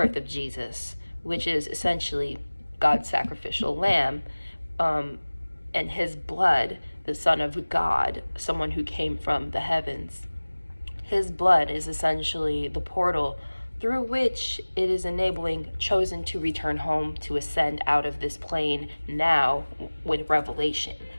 of Jesus, which is essentially God's sacrificial lamb, and his blood, the Son of God, someone who came from the heavens. His blood is essentially the portal through which it is enabling chosen to return home, to ascend out of this plane now with revelation.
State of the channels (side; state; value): both; inverted; correlation -1.00